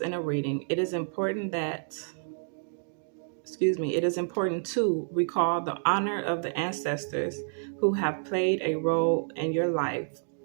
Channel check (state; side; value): silent; left; digital silence